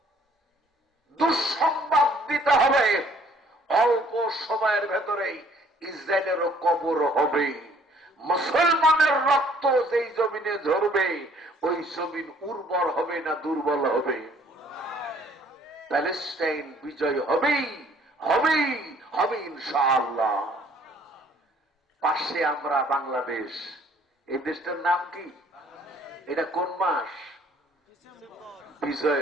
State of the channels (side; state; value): both; normal; correlation 0.59